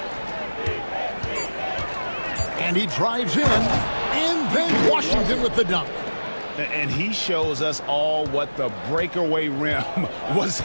And he drives in, and then Washington with the dunk. And he shows us all what the breakaway rim was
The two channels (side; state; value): both; inverted; correlation -1.00